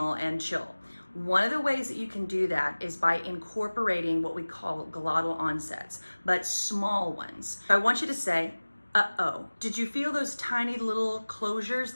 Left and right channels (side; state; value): both; inverted; correlation -1.00